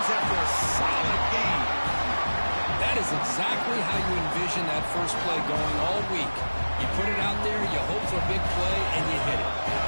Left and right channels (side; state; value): both; inverted; correlation -1.00